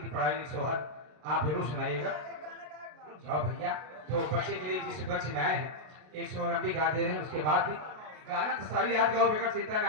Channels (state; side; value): late; left; 33 ms